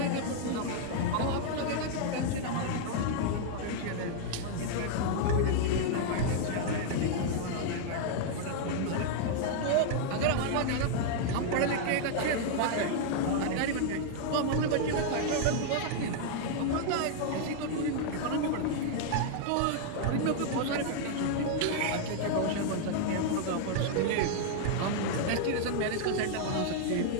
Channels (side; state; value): both; different; correlation 0.00